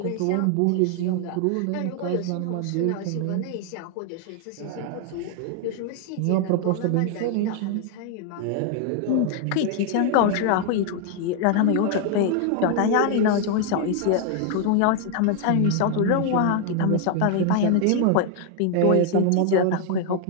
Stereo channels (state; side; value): different; both; correlation 0.00